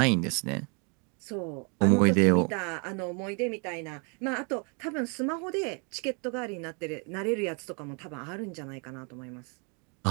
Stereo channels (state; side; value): quieter; left; 35.5 dB